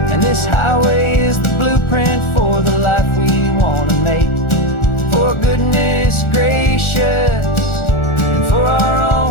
And this highway is the blueprint for the life we want to make. For goodness gracious, and for our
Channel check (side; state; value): right; late; 1.4 ms